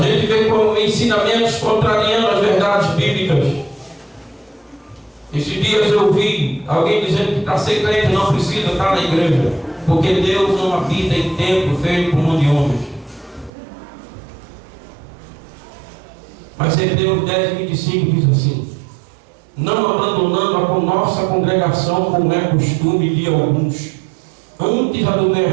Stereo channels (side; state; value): left; drops out; at 13.5 s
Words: vê como ensinamentos contrariando as verdades bíblicas. Esses dias eu ouvi alguém dizendo que para ser crente não precisa estar na igreja, porque Deus não habita em templo feito por mão de homens. Mas Hebreus 10:25 diz assim: não abandonando a nossa congregação, como é costume de alguns, antes